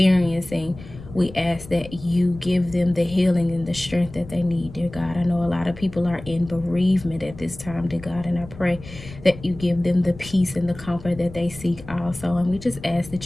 We ask that you give them the healing and the strength that they need, dear God. I know a lot of people are in bereavement at this time, dear God, and I pray that you give them the peace and the comfort that they seek also. And we just ask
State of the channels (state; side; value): noise; left; rumble, 16 dB below the sound